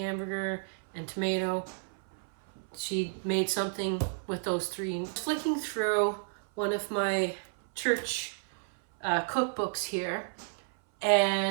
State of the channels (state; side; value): silent; left; 57 dB below the other